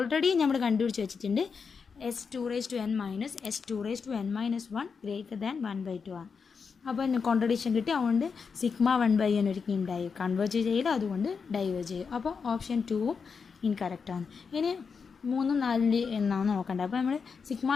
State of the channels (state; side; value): quieter; right; 5.6 dB